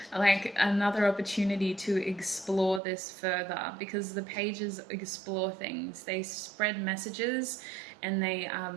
like another opportunity to explore this further, because the pages explore things, they spread messages, and they are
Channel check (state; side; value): drops out; left; at 2.8 s